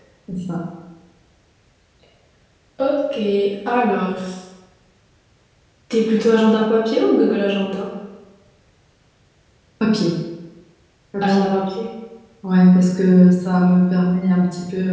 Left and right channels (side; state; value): both; identical; correlation 1.00